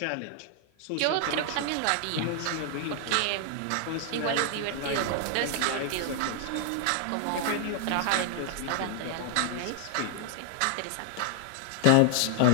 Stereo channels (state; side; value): different; both; correlation 0.00